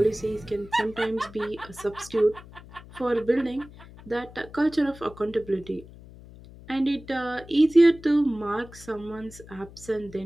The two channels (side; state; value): left; noise; hum, 19 dB below the sound